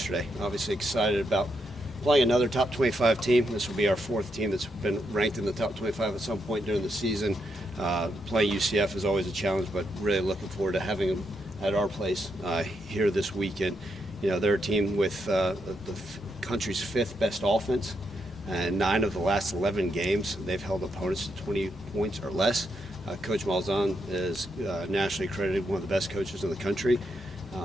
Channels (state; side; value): normal; both; correlation 0.81